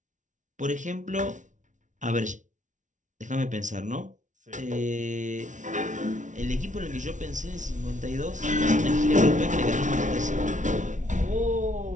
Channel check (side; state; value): left; late; 0.37 ms